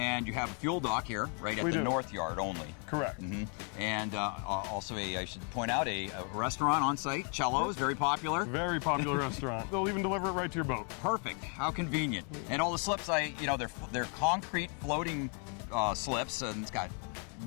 you have a fuel dock here, right at the North Yard only. Correct. And also I should point out, a restaurant on site, Cello's, very popular. Very popular restaurant. They'll even deliver it right to your boat. Perfect. How convenient. And all the slips, they're concrete floating slips, and it's got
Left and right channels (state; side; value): quieter; right; 39.9 dB